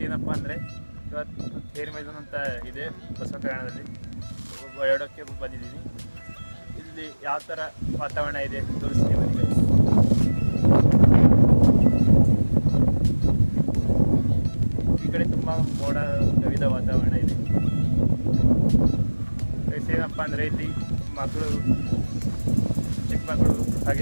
ಅಂದರೆ ಇವತ್ತು ಥೇರಿ ಮೈದಾನ ಅಂತ ಇದೆ ಬಸವ ಕಲ್ಯಾಣದಲ್ಲಿ ಓಡಾಡೋಕ್ಕೆ ಬಂದಿದ್ದೀನಿ. ಇಲ್ಲಿ ಯಾವ ಥರ ವಾತಾವರಣ ಇದೆ ತೋರಿಸ್ತೀನಿ ನಿಮಗೆ. ಈ ಕಡೆ ತುಂಬ ಮೋಡ ಕವಿದ ವಾತಾವರಣ ಇದೆ. ಏನಪ್ಪ ಅಂದರೆ ಇಲ್ಲಿ ಮಕ್ಕಳು, ಚಿಕ್ಕ ಮಕ್ಕಳು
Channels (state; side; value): inverted; both; correlation -1.00